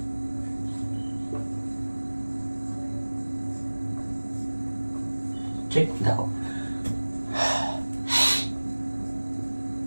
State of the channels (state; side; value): inverted; both; correlation -1.00